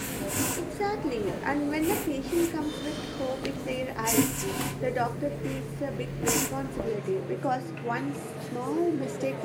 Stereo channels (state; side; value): identical; both; correlation 1.00